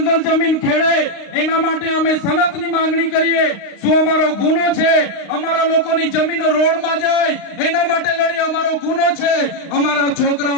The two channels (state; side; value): late; right; 35 ms